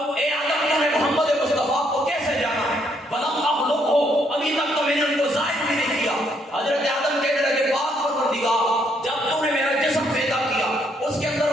آدم تو نے محمد مصطفیٰ کو کیسے جانا, ولم اخلقہ, ابھی تک تو میں نے ان کو ظاہر بھی نہیں کیا. حضرت آدم کہنے لگے پاک پروردگار جب تو نے میرا جسم پیدا کیا اس کے اندر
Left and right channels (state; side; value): normal; both; correlation 0.71